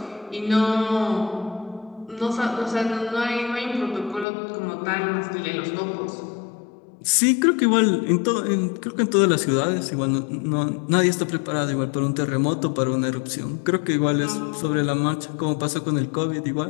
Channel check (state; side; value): drops out; right; at 4.2 s